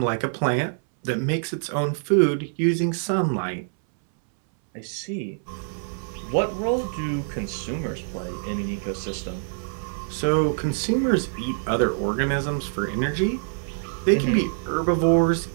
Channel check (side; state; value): left; silent; 62 dB below the other